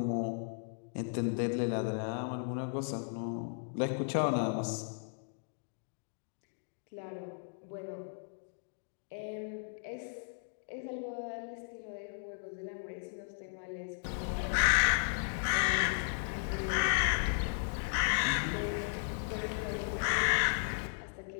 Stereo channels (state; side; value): silent; right; digital silence